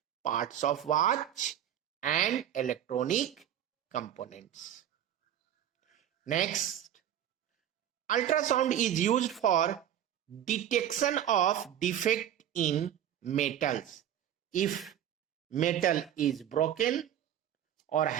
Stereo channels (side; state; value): left; quieter; 10.5 dB